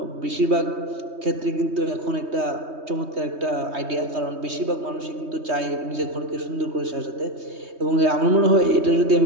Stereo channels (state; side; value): late; left; 3.2 ms